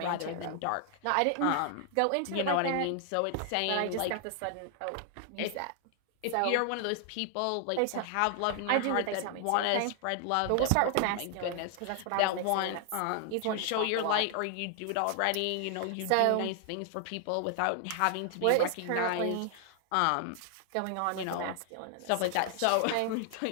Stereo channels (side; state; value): both; different; correlation 0.00